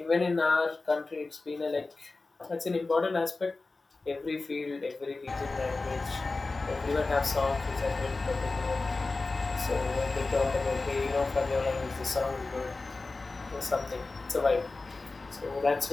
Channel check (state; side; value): quieter; right; 3.6 dB